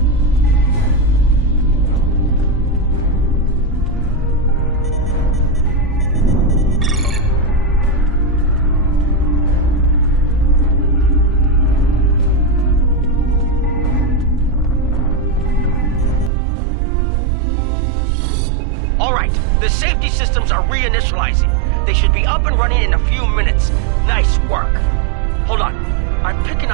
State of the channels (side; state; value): left; drops out; at 16.3 s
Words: The safety systems are reinitializing. They should be up and running in a few minutes. Nice work. Hold on. I'm picking